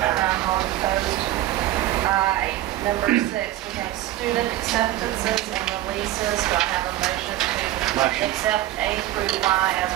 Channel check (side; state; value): left; quieter; 14.7 dB